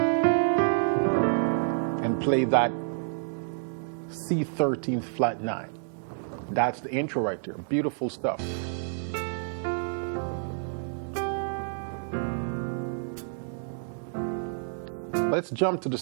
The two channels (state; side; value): silent; left; digital silence